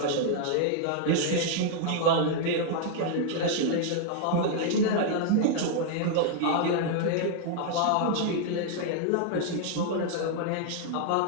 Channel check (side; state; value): both; different; correlation 0.00